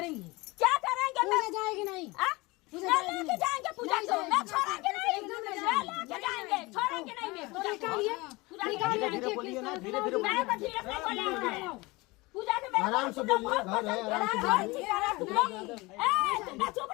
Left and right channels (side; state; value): right; quieter; 23.2 dB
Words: क्या करेंगे? पूजा जाएगी नहीं? लेके जाएंगे पूजा को, मैं छोड़ेंगे नहीं, लेके जाएंगे, छोड़ेंगे नहीं मैं पूजा को। धीरे धीरे बोलिए ना, धीरे धीरे मैं तो धीरे से बोलेंगे। पूजा के आराम से बोलिए, घर है, आराम से बोलिए। तुम चुप